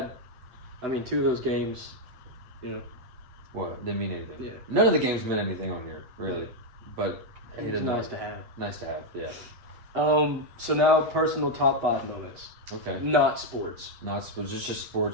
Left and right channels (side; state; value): left; late; 8.0 ms